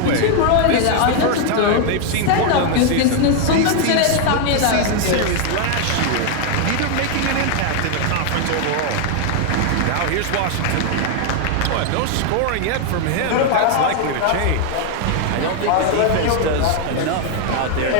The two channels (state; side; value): different; both; correlation 0.00